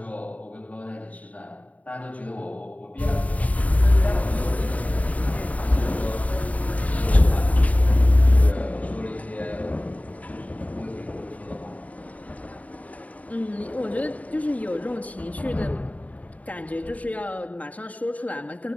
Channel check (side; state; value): right; late; 0.070 ms